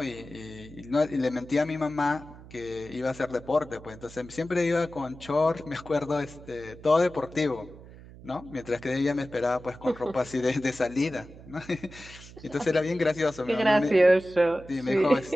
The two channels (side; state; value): right; noise; hum, 18 dB below the sound